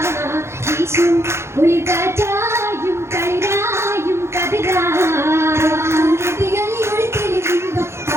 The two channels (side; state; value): left; late; 0.13 ms